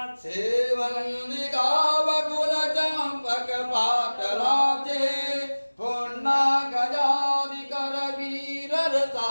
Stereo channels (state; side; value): inverted; both; correlation -1.00